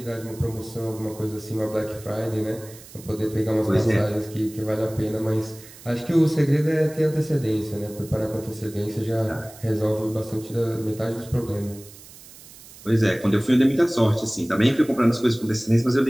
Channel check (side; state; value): right; noise; hiss, 19 dB below the sound